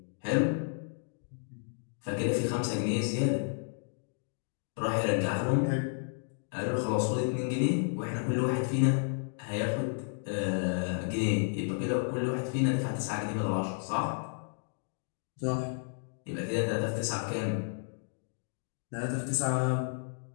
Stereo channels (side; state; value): right; silent; digital silence